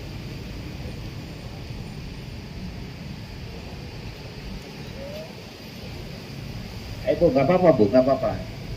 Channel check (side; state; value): both; identical; correlation 1.00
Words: Bu, gak apa-apa Bu, gak apa-apa.